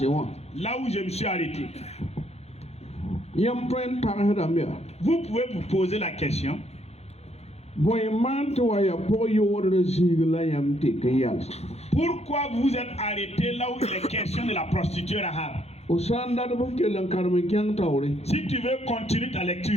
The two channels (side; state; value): right; late; 0.31 ms